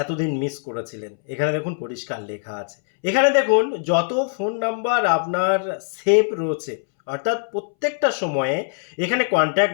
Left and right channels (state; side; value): silent; right; 63 dB below the other